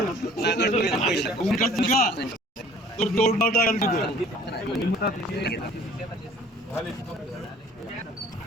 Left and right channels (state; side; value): normal; both; correlation 0.52